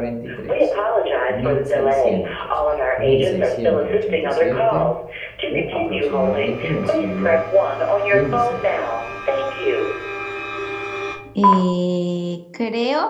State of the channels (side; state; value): both; identical; correlation 1.00